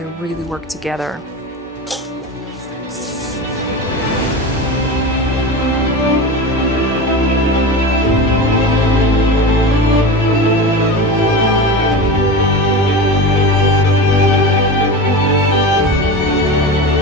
really work together.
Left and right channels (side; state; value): both; normal; correlation 0.27